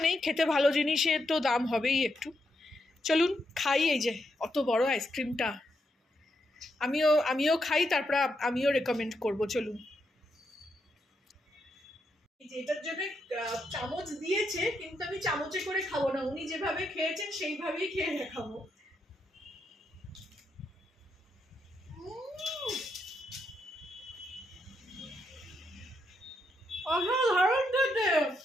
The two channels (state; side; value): normal; both; correlation 0.81